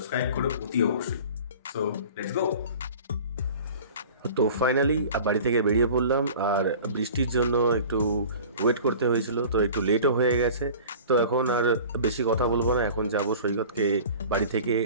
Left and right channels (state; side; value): inverted; both; correlation -0.42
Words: করো অতি অবশ্যই। So let's go. তো ফাইনালি বাড়ি থেকে বেরিয়ে পড়লাম, আর বৃষ্টির জন্য একটু ওয়েট করতে হয়েছিল, তো একটু লেটও হয়ে গেছে। তো এখন আর বেশি কথা বলবো না, এখন যাব সৈকতকে বাড়ি থেকে